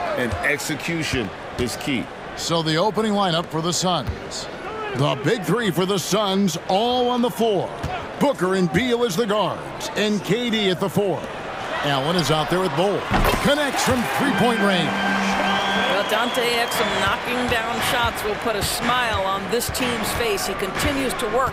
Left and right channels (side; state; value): both; identical; correlation 1.00